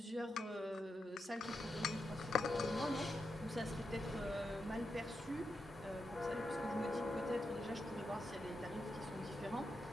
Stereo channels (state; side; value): normal; both; correlation 0.86